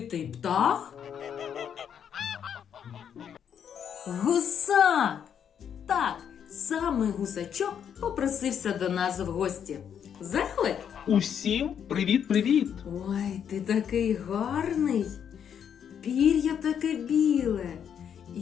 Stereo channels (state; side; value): quieter; right; 8.4 dB